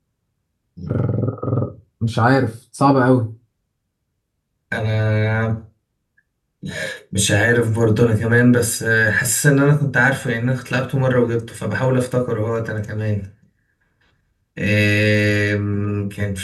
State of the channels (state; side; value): identical; both; correlation 1.00